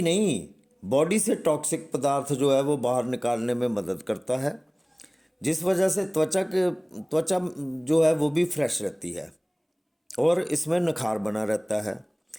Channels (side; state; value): both; identical; correlation 1.00